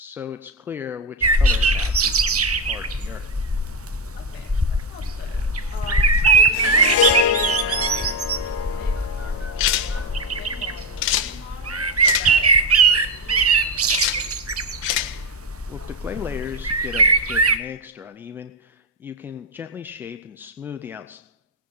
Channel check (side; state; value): both; normal; correlation 0.08